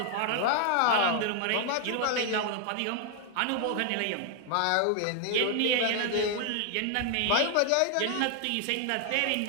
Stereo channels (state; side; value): different; both; correlation 0.00